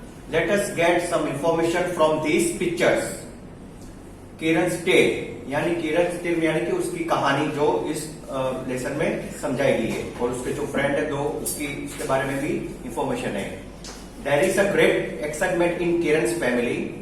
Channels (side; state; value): both; identical; correlation 1.00